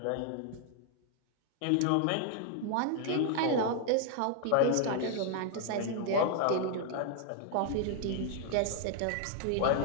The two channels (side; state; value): both; different; correlation 0.00